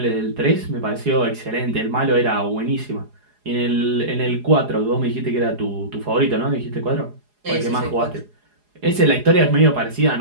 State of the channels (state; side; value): late; left; 4.8 ms